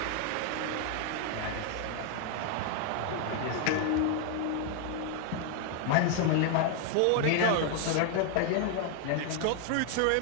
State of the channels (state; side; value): different; both; correlation 0.00